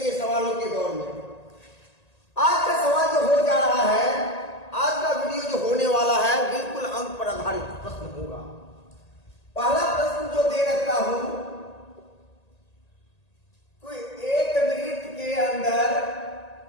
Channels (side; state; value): right; late; 1.8 ms